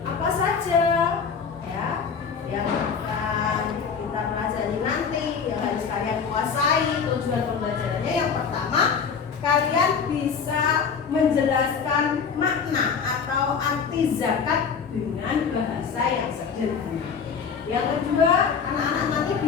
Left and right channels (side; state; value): right; quieter; 6.2 dB